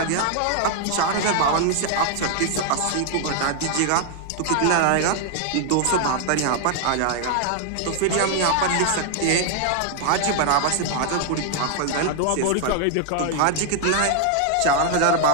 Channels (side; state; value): both; different; correlation 0.00